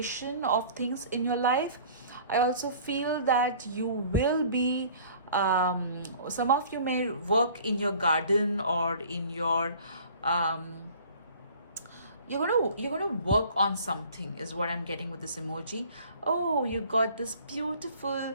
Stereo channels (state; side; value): inverted; both; correlation -0.49